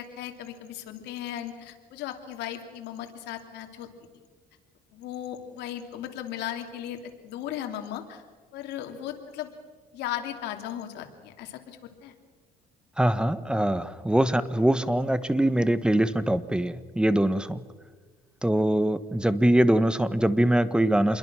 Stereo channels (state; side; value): normal; both; correlation 0.91